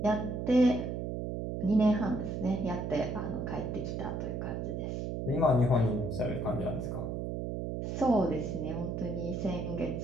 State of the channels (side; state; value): right; noise; hum, 3 dB below the sound